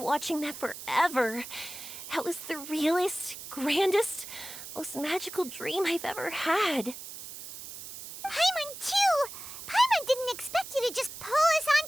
that forever. That was the realest, grandest, most magical dream I've ever had. Paimon, too! Paimon didn't expect you to just pull us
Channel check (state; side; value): noise; right; hiss, 11 dB below the sound